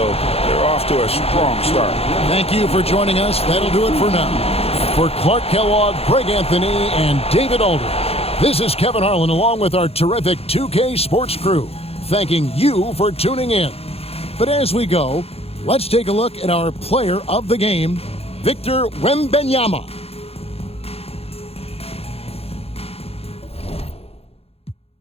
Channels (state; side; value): late; right; 0.29 ms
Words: they're off to a strong start. Thank you for joining us. That'll do it for now. For Clark Kellogg, Greg Anthony, and David Alder, this is Kevin Harlan along with our terrific 2K Sports crew, thanking you for tuning in. But as we go, let's take a look at our player of the game, Victor Wembanyama.